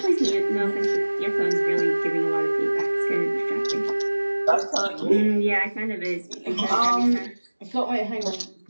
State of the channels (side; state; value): both; inverted; correlation -1.00